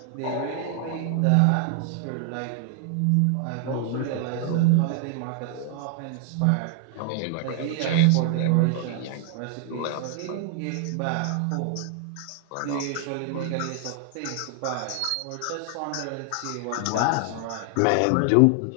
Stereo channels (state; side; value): different; both; correlation 0.00